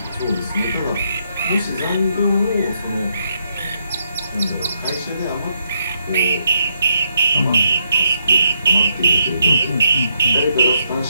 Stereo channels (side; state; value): both; inverted; correlation -0.79